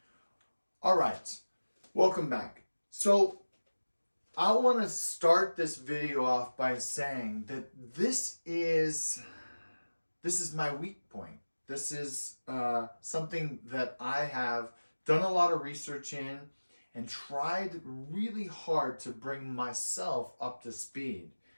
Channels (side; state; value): both; inverted; correlation -1.00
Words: All right, welcome back. So I want to start this video off by saying that this is my weak point. This is something that I have done a lot of research in and tried really hard to bring myself up to speed.